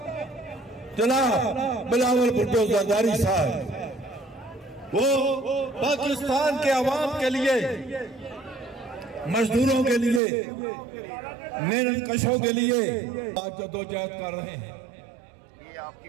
जनाब बिलावल भुट्टो जरदारी साहब वो पाकिस्तान के अवाम के लिए, मजदूरों के लिए, मेहनत कशों के लिए आज जद्दोजहद कर रहे हैं।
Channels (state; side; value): drops out; left; at 10.2 s